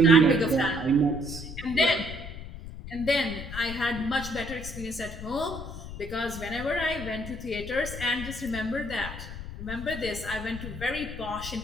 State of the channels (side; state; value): left; noise; rumble, 10 dB below the sound